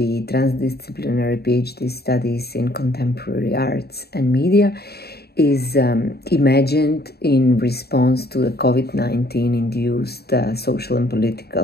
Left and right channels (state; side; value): late; right; 0.46 ms